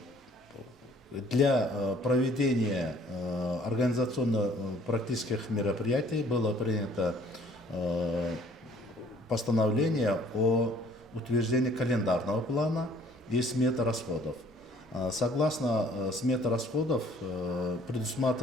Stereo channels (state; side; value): normal; both; correlation 0.57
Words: Для проведения организационно-практических мероприятий было принято постановление о утверждении календарного плана и сметы расходов. Согласно сметы расходов